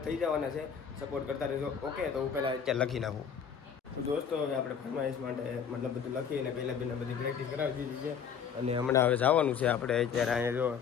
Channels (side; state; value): right; quieter; 7.3 dB